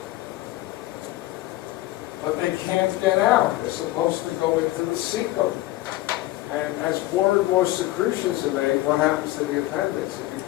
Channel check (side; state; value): right; quieter; 17.1 dB